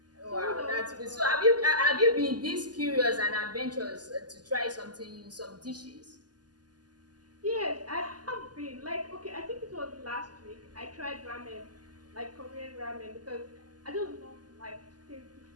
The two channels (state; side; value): late; left; 0.70 ms